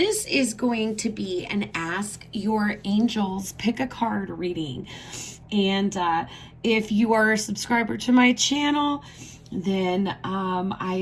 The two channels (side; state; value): both; identical; correlation 1.00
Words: is going to be an Ask Your Angels Pick a Card reading. And if you are a subscriber to my channel, then